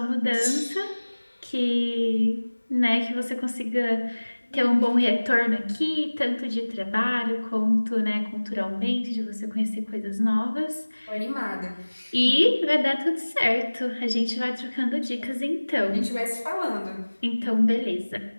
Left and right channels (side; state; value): both; inverted; correlation -1.00